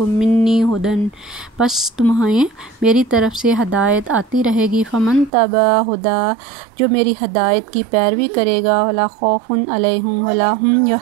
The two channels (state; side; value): drops out; left; at 5.3 s